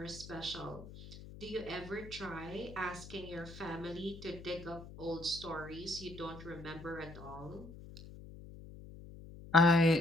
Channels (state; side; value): noise; left; hum, 15 dB below the sound